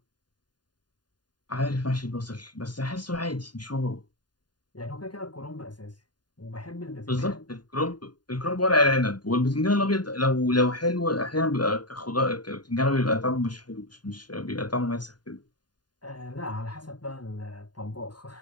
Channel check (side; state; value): right; late; 0.70 ms